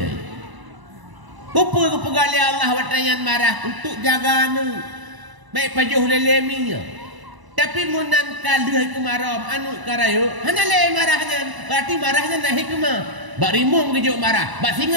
Kupu pegali Allah watayan marah untuk jaga anu. Baik pajuh leleminya. Tapi munan kaluh kemarau anu karayo hanya le marahnya. Berarti marahnya nak hikmah. Bak rimung kejuk marah, bak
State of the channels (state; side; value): late; left; 1.0 ms